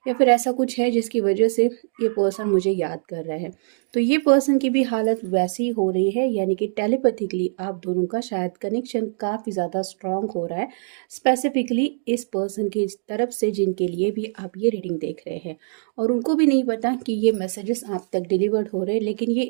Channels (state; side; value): silent; left; digital silence